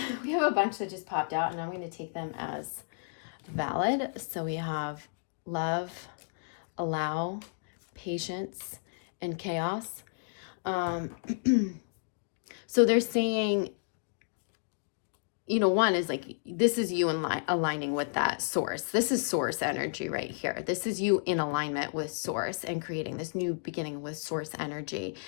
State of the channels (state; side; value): silent; right; digital silence